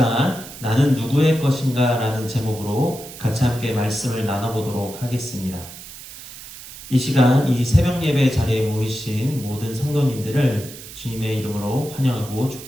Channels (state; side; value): noise; right; hiss, 15 dB below the sound